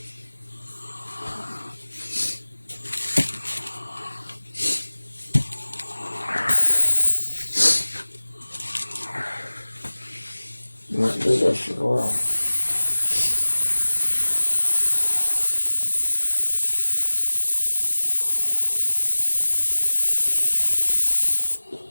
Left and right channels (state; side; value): inverted; both; correlation -1.00